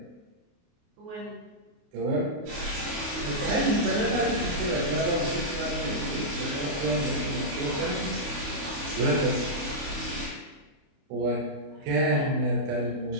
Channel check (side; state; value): left; late; 28 ms